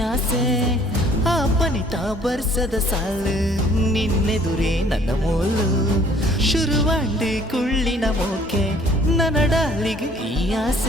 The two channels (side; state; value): both; normal; correlation 0.57